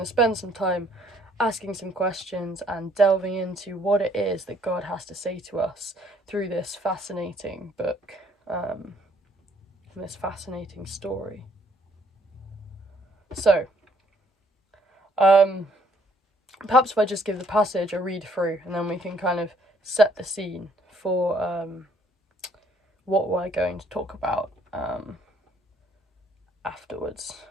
to spend some time asking some questions and delving into what it is that God has to say to us through this fascinating book, and this fascinating story. So, perhaps if I just give the passage a read through, and then we can kind of set the scene for what we're going to talk about afterwards.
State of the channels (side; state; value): both; normal; correlation 0.64